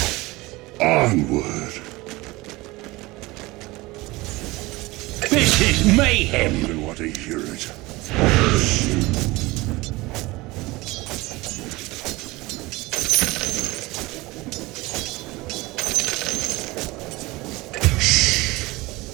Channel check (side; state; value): left; quieter; 21.3 dB